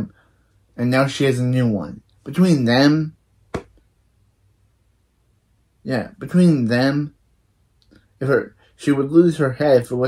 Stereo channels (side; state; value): both; identical; correlation 1.00